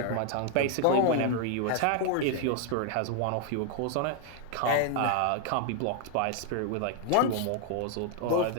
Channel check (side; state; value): both; different; correlation 0.00